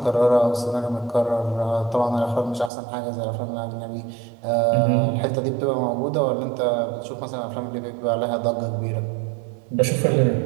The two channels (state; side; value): drops out; left; at 2.7 s